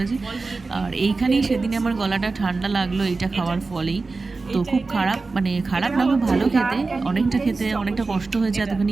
আর এইখানেই সেদিনে আমার গলাটা ঠান্ডা লাগলো এইটা খাওয়ার ফলেই। তো খুব খারাপ, মানে খারাপ না, খুব ভালো খেতে, অনেকটা কষ্ট হয়েছে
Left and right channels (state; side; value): quieter; left; 3.9 dB